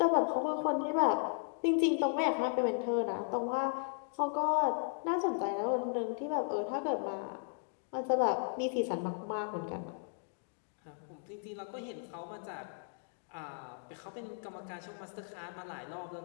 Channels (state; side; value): silent; right; digital silence